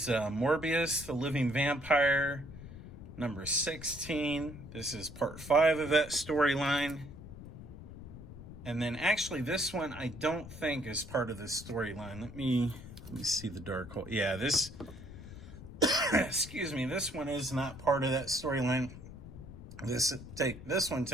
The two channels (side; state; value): left; noise; rumble, 14 dB below the sound